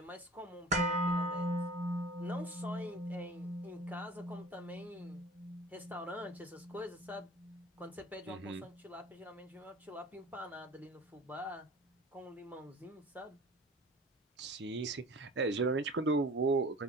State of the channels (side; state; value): both; normal; correlation 0.43